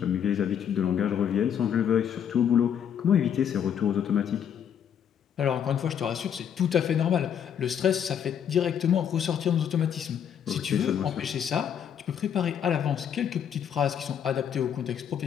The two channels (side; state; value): right; quieter; 8.6 dB